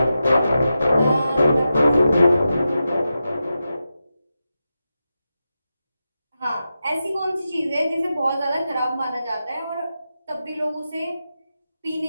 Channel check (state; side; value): inverted; both; correlation -0.90